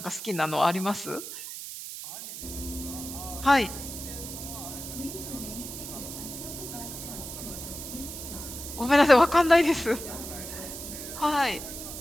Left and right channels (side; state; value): right; noise; hiss, 9 dB below the sound